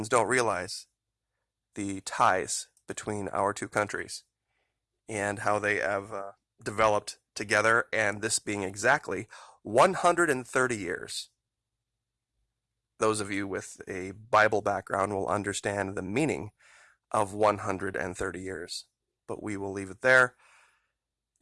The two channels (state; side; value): identical; both; correlation 1.00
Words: don't realize the ties between our two countries and how they have developed together, and this being exactly 130 years. Those of you with a Bible background will understand the meaning of 130 years, but we will leave it there.